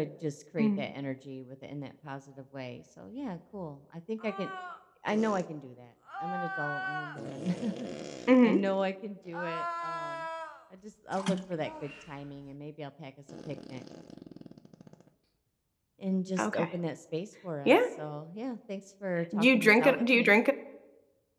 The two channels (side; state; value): both; identical; correlation 1.00